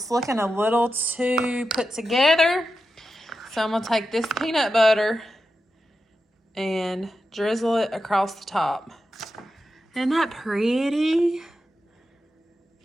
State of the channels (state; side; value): normal; both; correlation 0.90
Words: looking a little too put together. So I'm gonna take this peanut butter and drizzle it across the top. Isn't that pretty?